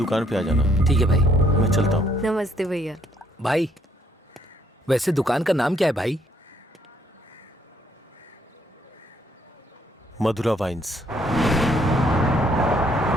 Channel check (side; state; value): both; normal; correlation 0.67